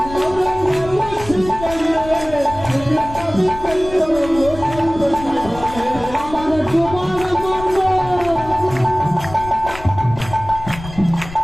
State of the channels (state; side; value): noise; left; rumble, 14 dB below the sound